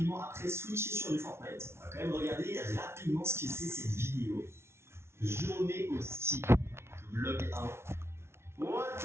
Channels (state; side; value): late; left; 0.12 ms